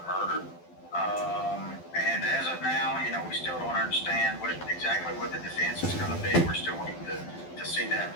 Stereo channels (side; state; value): right; late; 12 ms